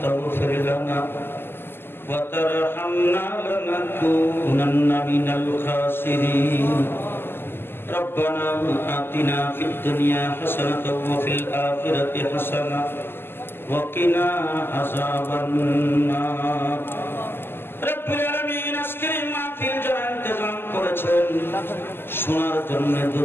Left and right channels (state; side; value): late; right; 0.11 ms